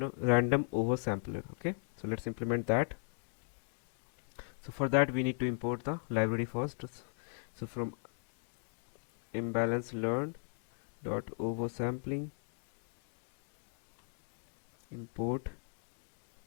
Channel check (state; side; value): silent; right; 53 dB below the other